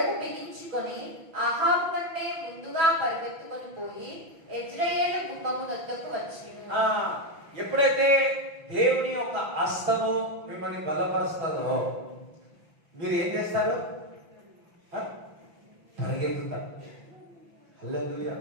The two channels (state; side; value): late; left; 5.9 ms